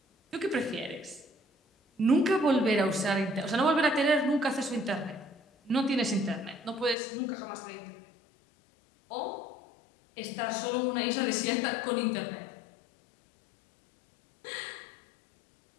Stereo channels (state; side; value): drops out; right; at 7.0 s